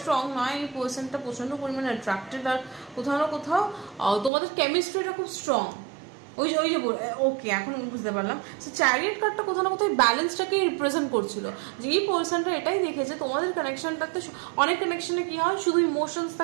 নয়, এই পার্সনটা প্রচণ্ড পরিমাণে অ্যাট্রাক্টেড, আর কোথাও না কোথাও তোমাদের কেমিস্ট্রিটা খুব স্ট্রং। ওই যে ওকে, এখন বুঝতে পারলাম। সো চ্যারিয়ট কার্ডটা কোথাও না কোথাও ব্যালেন্সটাকে রিপ্রেজেন্ট করছিল, যে এই পার্সনটা এটাই দেখেছে তোমাদের কানেকশনটাতে। অনেক কানেকশনে কি হয়, শুধু ইমোশনস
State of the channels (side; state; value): left; drops out; at 4.3 s